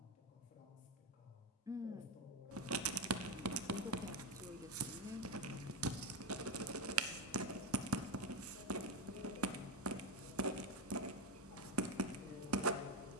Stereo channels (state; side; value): normal; both; correlation 0.10